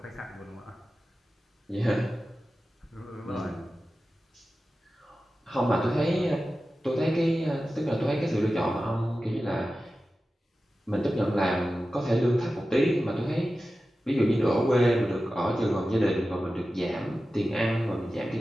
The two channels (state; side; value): normal; both; correlation 0.94